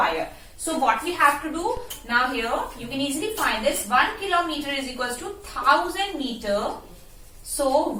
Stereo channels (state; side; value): identical; both; correlation 1.00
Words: So what we have to do now here, you can easily find this. 1 kilometer is equals to 1000 meter. So